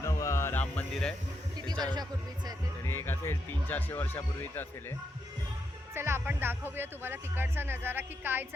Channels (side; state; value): both; normal; correlation 0.82